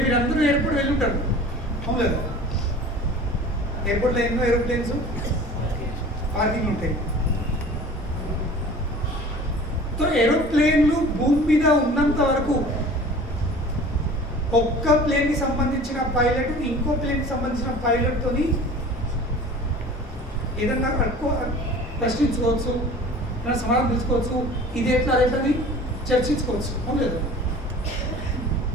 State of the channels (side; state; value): both; normal; correlation 0.43